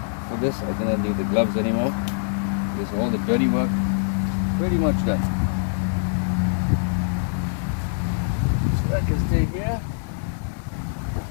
For this, I do not need the gloves anymore, because all the dirty work pretty much done. So that can stay here.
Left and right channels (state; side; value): silent; right; 63 dB below the other